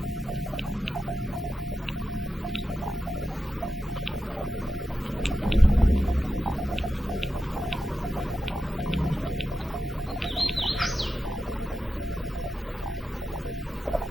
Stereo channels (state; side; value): normal; both; correlation 0.90